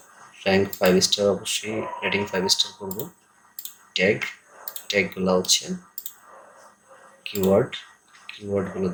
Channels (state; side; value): identical; both; correlation 1.00